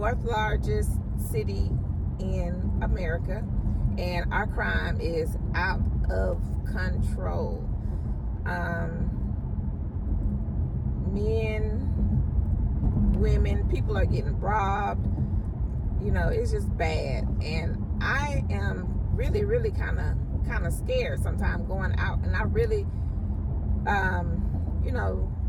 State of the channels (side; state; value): both; identical; correlation 1.00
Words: largest city in America, and our crime is out of control. Men, women, people are getting robbed. It's just bad, and I am really kind of scared sometimes going out, and I really